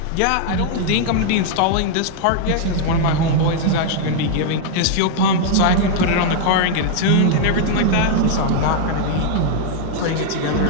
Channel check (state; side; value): different; both; correlation 0.00